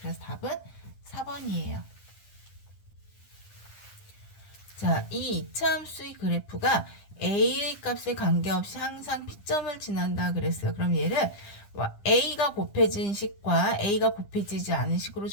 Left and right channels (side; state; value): right; late; 9.9 ms